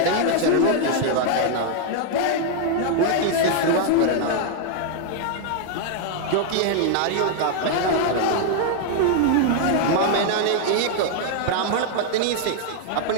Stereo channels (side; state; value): both; different; correlation 0.00